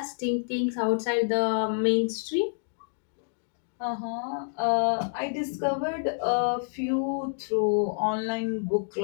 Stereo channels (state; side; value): silent; right; digital silence